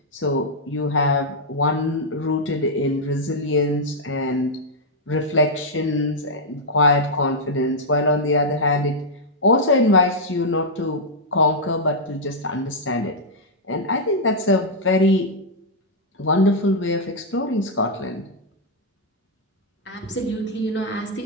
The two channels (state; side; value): normal; both; correlation -0.05